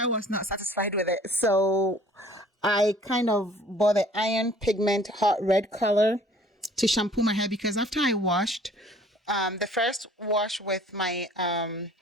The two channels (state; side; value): normal; both; correlation 0.54